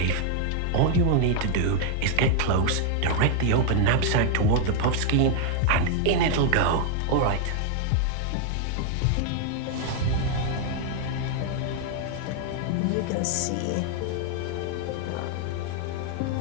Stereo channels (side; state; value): both; different; correlation 0.00